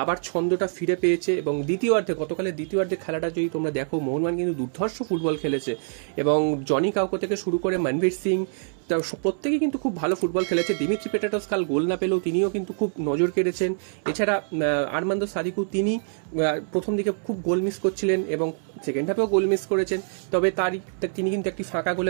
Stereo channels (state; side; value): silent; left; 62 dB below the other